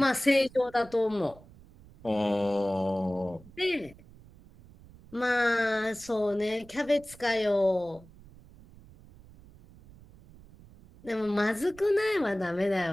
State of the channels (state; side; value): noise; right; rumble, 22 dB below the sound